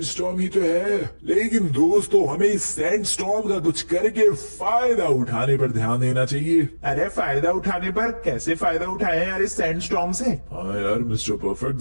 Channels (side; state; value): both; inverted; correlation -1.00